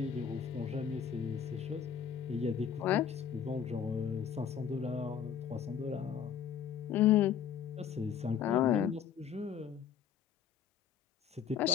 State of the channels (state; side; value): quieter; right; 8.1 dB